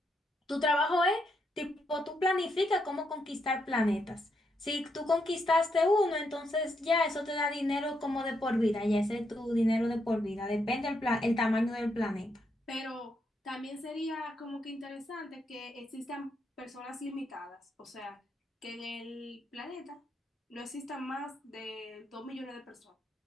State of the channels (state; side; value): normal; both; correlation 0.79